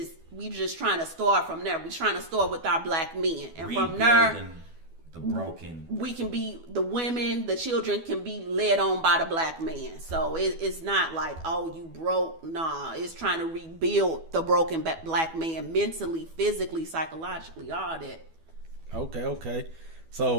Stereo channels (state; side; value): late; left; 12 ms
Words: we just trying to start from there. We trying to start with our black men, and from there, the broken, we can be the women, the children can be led on by the black man. So it's not like, oh, you broke. Nah, it's trying to rebuild the broken black man mentally, physically, psychologically, all that. Okay.